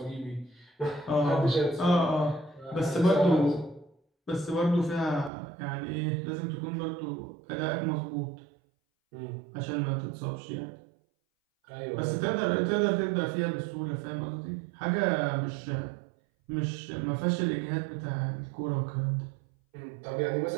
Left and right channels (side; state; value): left; drops out; at 5.3 s